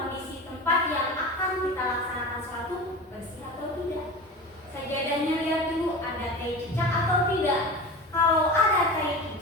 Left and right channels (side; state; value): both; normal; correlation 0.30